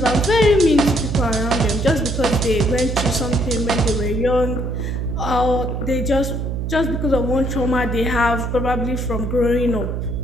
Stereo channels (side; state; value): right; noise; hum, 3 dB below the sound